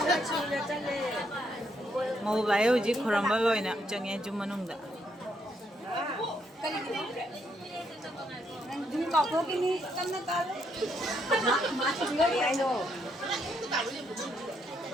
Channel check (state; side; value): normal; both; correlation 0.75